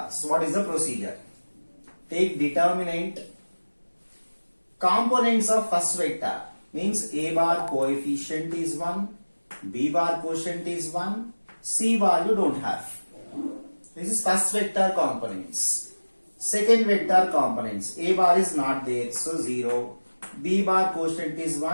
what is the procedure? Take determinant, components of first vector means A bar coefficient is 1, B bar quotient is 1, C bar you don't have. This is first vector components. Second vector components, A bar is not there, so 0. B bar quotient is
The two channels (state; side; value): inverted; both; correlation -1.00